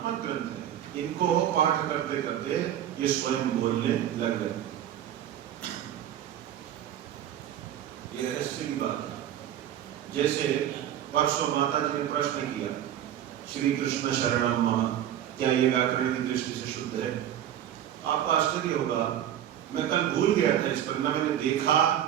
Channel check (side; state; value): left; quieter; 11.0 dB